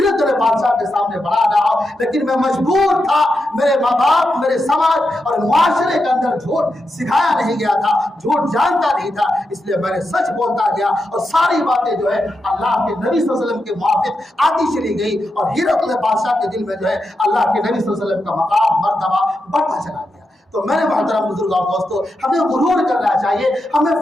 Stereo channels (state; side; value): normal; both; correlation 0.87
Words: بادشاہ کے سامنے بڑھا رہا ہو، لیکن میں مجبور تھا، میرے ماں باپ، میرے سماج اور معاشرے کے اندر جھوٹ سکھایا نہیں گیا تھا، جھوٹ جانتا نہیں تھا، اس لیے میں نے سچ بولتا گیا اور ساری باتیں جو ہے اللہ کے نبی صلی اللہ علیہ وسلم کے موافق آتی چلی گئی اور ہرقل بادشاہ کے دل میں جو ہے اللہ کے نبی صلی اللہ علیہ وسلم کا مقام مرتبہ بڑھتا چلا گیا۔ تو میرے محترم بزرگ اور دوستو، ہمیں غرور کرنا چاہیے، ہمیں